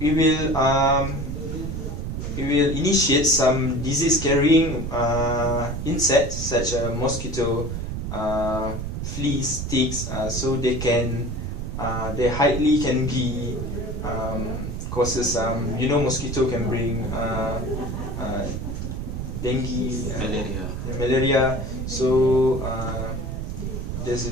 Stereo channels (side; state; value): right; noise; rumble, 4 dB below the sound